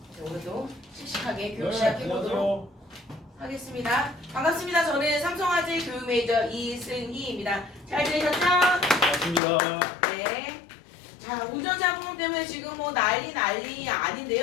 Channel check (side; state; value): right; drops out; at 9.4 s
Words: 오늘도 씩씩하게 교육 시작해보도록 하겠습니다. 반갑습니다. 저는 삼성화재 교육 메이저 이승희입니다. 잘 지내셨죠? 반갑습니다. 네. 자, 운전자 보험 때문에 지금 뭐 난리